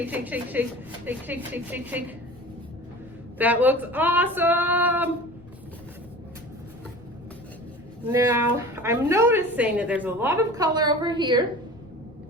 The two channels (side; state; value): left; noise; rumble, 24 dB below the sound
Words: shake, shake, shake, shake, shake, shake, shake, shake. That looks awesome. Now, I'm noticing that there's a lot of color over here.